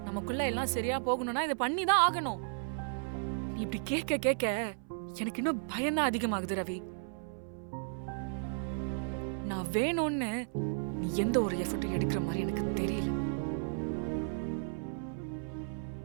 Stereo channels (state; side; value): silent; left; 55 dB below the other